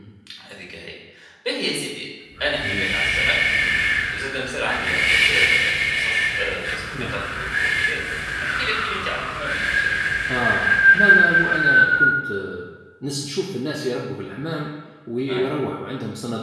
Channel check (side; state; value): both; identical; correlation 1.00